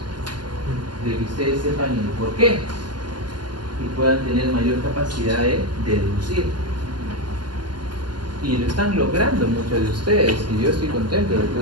De que ustedes sepan el por qué y puedan tener mayor capacidad de deducir. Y lo están logrando muchos de ustedes y yo estoy contento, el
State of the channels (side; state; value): left; late; 0.71 ms